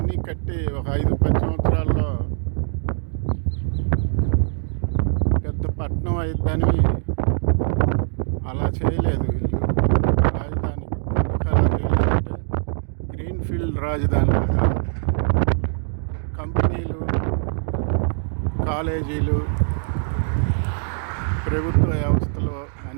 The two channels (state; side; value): silent; left; digital silence